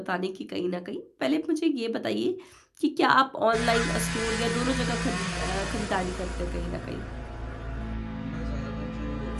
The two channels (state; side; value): identical; both; correlation 1.00